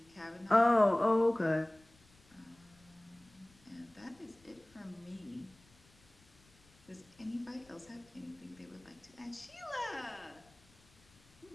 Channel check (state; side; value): noise; left; rumble, 28 dB below the sound